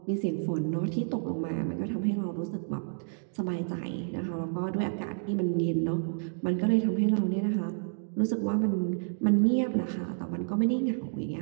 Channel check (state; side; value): silent; left; digital silence